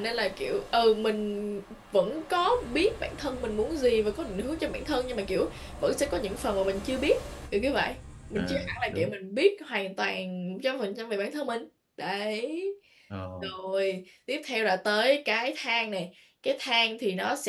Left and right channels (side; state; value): both; identical; correlation 1.00